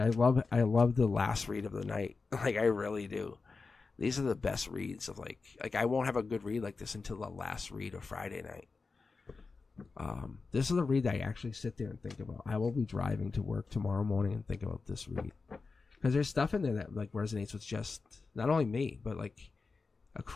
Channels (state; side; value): quieter; right; 4.3 dB